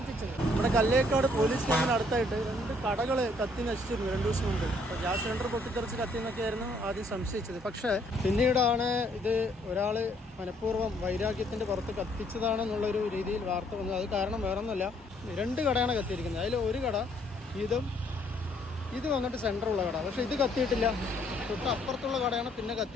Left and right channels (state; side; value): normal; both; correlation 0.66